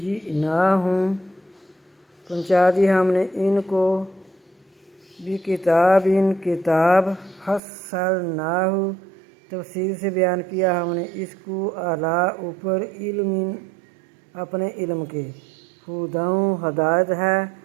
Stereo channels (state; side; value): drops out; left; at 7.6 s